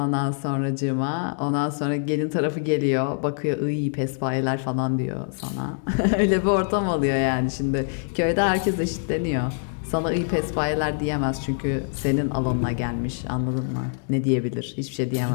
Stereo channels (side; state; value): right; silent; digital silence